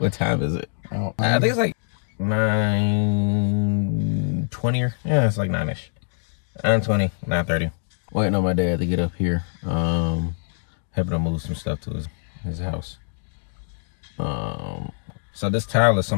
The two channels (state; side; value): silent; right; digital silence